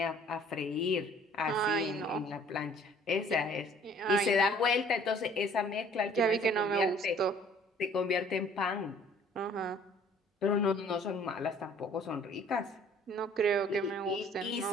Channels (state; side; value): normal; both; correlation 0.55